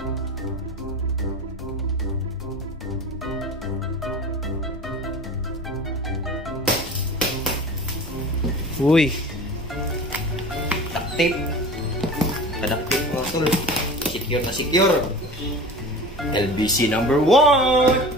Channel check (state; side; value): normal; both; correlation 0.36